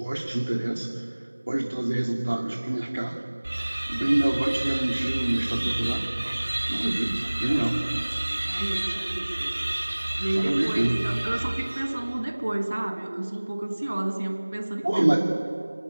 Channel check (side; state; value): both; inverted; correlation -1.00